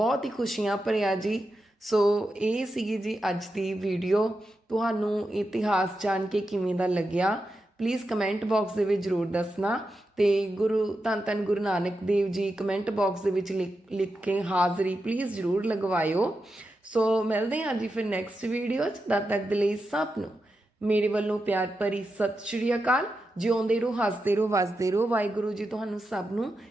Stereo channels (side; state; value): both; normal; correlation 0.89